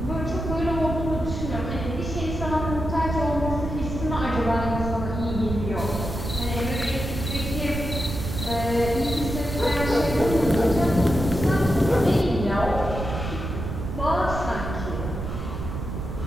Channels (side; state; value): right; noise; rumble, 5 dB below the sound